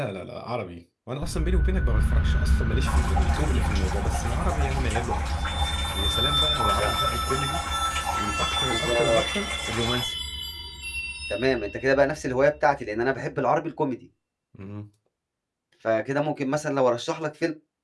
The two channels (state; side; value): identical; both; correlation 1.00